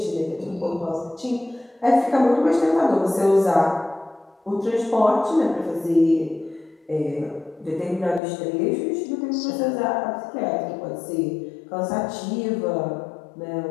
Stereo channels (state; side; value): drops out; right; at 8.2 s